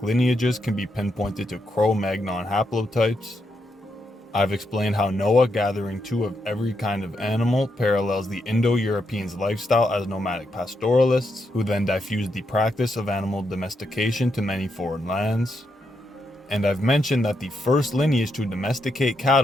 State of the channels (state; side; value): normal; both; correlation 0.81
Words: lineages can be pinpointed to Cro-Magnon haplotypes. I've explained how Noah gathering two of every kind of animal parallels the Indo-Europeans' lifestyle as nomadic pastoralists, who then diffused the practice of animal domestication to many foreign lands. And I've mentioned that the first lineage to domesticate